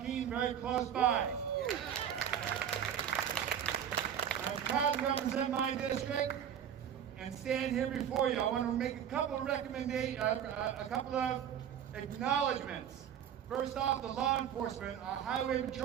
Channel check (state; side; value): quieter; left; 9.2 dB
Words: very close by. I'm proud to represent my district and stand here before you. I want to make a couple of acknowledgments. First off, the law enforcement, our highway